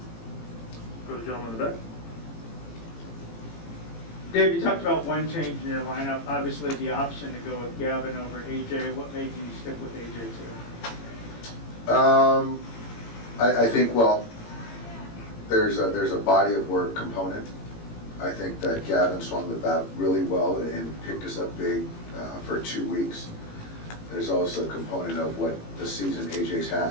Go to the gentleman in the back. Dave, you talked about one change in your lineup. Obviously, the option to go with Gavin over AJ. What made you stick with AJ today? I think, well, there's a body of work component. I think that Gavin swung the bat really well and picked us up big for 2 weeks. There's also a component of what the season AJ's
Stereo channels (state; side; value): late; right; 18 ms